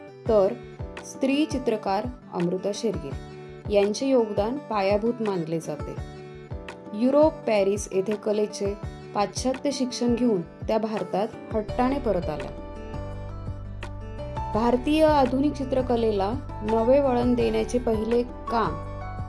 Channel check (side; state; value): both; identical; correlation 1.00